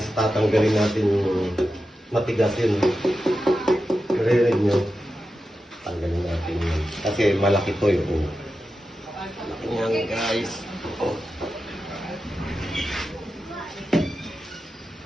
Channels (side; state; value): both; normal; correlation 0.91